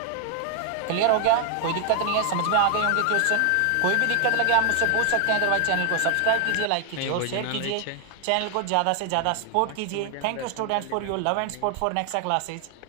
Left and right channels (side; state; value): both; different; correlation 0.00